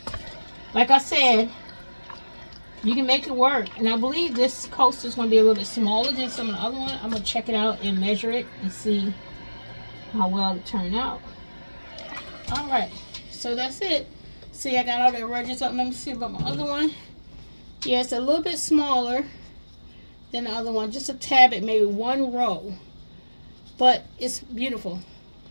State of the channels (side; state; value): both; inverted; correlation -1.00